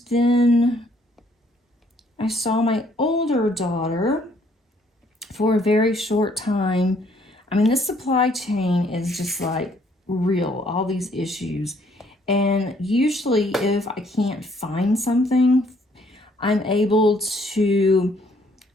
then I saw my older daughter for a very short time. I mean, this supply chain is just like real, all these issues. And usually if I can't find something, I'm able to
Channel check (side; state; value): both; normal; correlation 0.64